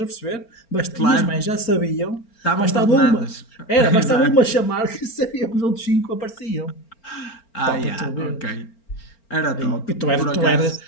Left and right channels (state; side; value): late; right; 4.4 ms